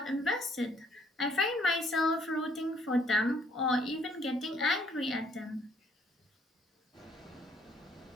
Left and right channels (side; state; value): both; normal; correlation 0.64